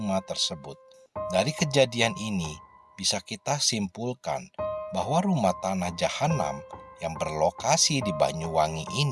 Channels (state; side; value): identical; both; correlation 1.00